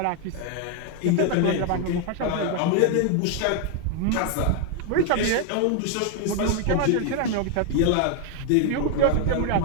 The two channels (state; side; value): different; both; correlation 0.00